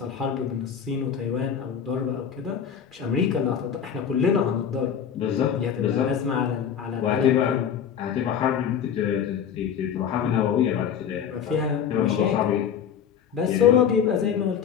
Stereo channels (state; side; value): quieter; right; 8.1 dB